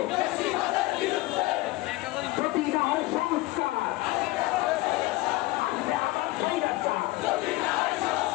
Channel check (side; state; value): right; quieter; 19.8 dB